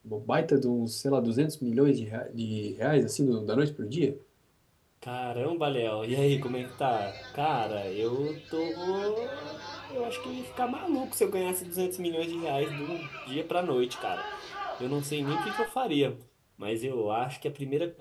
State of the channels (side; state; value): both; identical; correlation 1.00